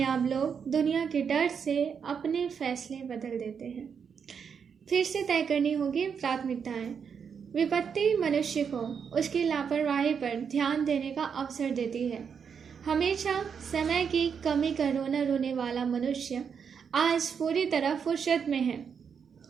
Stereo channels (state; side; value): quieter; left; 6.8 dB